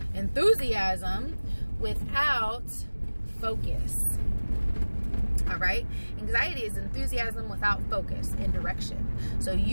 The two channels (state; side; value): inverted; both; correlation -1.00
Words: enthusiasm without focus. All right? Anxiety is enthusiasm without focus and direction. So